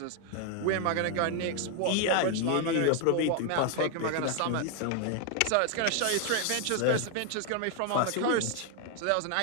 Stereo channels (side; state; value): both; different; correlation 0.01